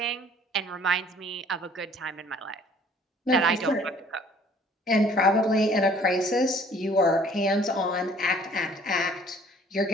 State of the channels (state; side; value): normal; both; correlation 0.55